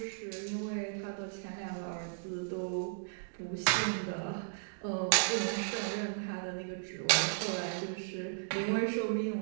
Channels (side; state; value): left; silent; digital silence